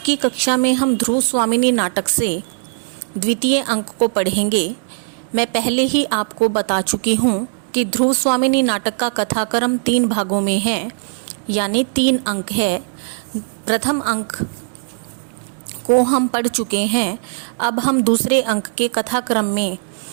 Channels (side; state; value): left; silent; digital silence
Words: कक्षा में हम ध्रुव स्वामिनी नाटक से द्वितीय अंक को पढ़ेंगे। मैं पहले ही आपको बता चुकी हूँ कि ध्रुव स्वामिनी नाटक का कथाक्रम 3 भागों में है, यानी 3 अंक है। प्रथम अंक को हम पढ़ चुके हैं। अब हम दूसरे अंक के कथाक्रम में